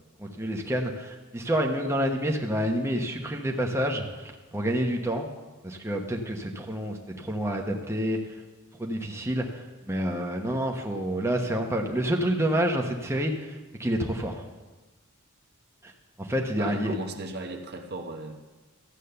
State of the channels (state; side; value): normal; both; correlation 0.64